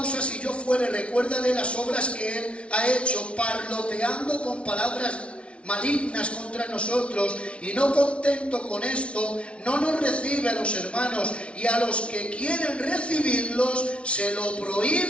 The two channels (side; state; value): right; late; 0.060 ms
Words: si yo fuere, recuérdale las obras que él ha hecho, parloteando con palabras malignas contra nosotros, y no contento con esto, no nos recibe a los hermanos, y a los que quieren recibirlos se lo